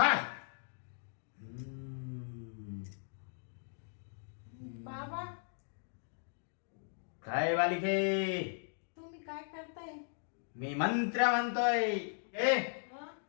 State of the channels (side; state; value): right; silent; digital silence